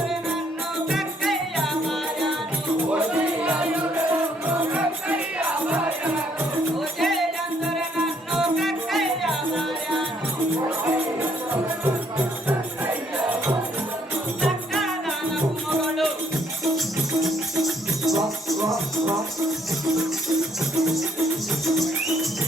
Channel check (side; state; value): both; normal; correlation 0.67